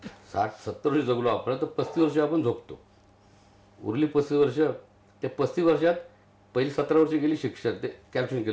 60-70 वर्ष जगलो आपण, तर 35 वर्ष आपण झोपतो. उरली 35 वर्ष. त्या 35 वर्षात पहिली 17 वर्ष गेली शिक्षण, ते कॅल्क्युलेशन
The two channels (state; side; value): identical; both; correlation 1.00